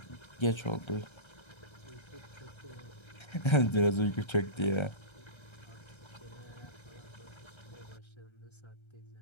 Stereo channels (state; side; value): late; right; 1.3 ms